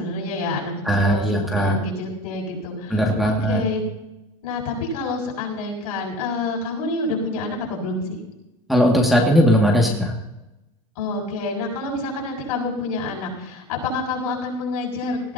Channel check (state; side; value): normal; both; correlation 0.46